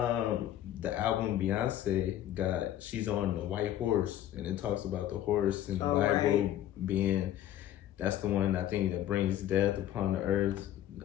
the album Beyonce got, she's on the white horse, and it talks about the horse and the Bible being, that's the one I think that brings death upon the earth.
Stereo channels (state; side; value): quieter; right; 12.2 dB